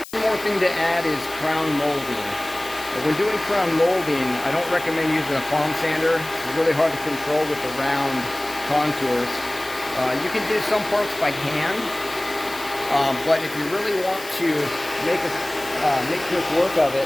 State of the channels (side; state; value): left; noise; hiss, 16 dB below the sound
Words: One more thing to add is crown molding. When doing crown molding, I don't recommend using a palm sander. It's really hard to control with the round contours. You can do some parts by hand, but if you really want to make quick work of